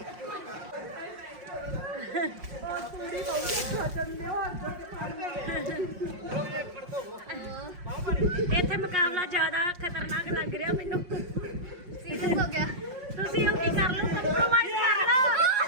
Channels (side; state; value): left; late; 5.6 ms